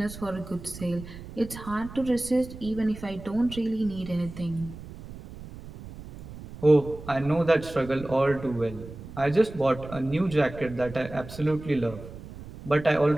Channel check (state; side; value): noise; right; rumble, 14 dB below the sound